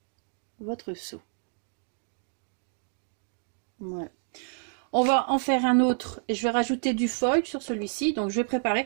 votre seau. Voilà. On va en faire un autre et je vais rajouter du foil sur celui-ci. Donc je vais préparer.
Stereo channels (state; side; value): silent; left; digital silence